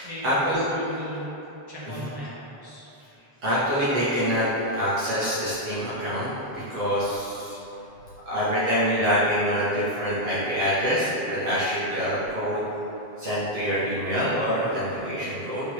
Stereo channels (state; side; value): late; left; 7.6 ms